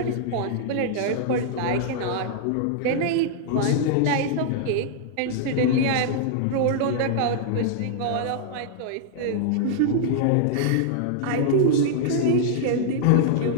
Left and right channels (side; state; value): both; different; correlation -0.01